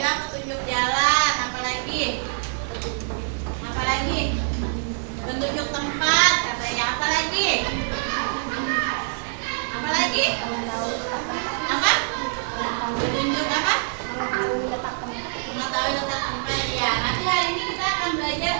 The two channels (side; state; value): left; silent; 62 dB below the other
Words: bilang petunjuk jalan, apalagi? Apalagi? Petunjuk tempat, katanya. Apalagi? Apalagi? Apa? Petunjuk apa? Mengetahui letak tempat. Ya, nanti hari ini kita akan belajar